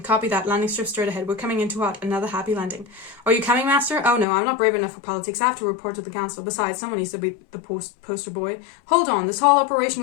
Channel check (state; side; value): drops out; right; at 4.2 s